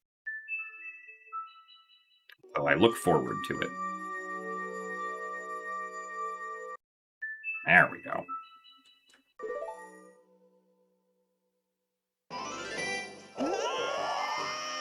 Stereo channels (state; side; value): identical; both; correlation 1.00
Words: So I look forward to it. There we go.